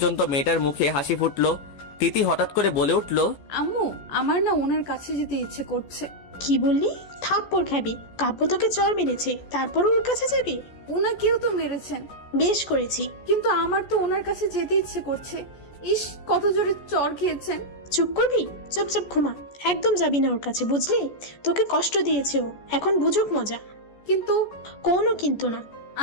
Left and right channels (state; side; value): late; right; 14 ms